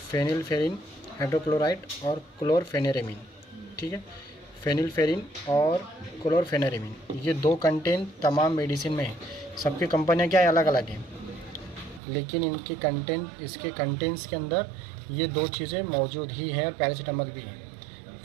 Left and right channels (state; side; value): drops out; left; at 12.0 s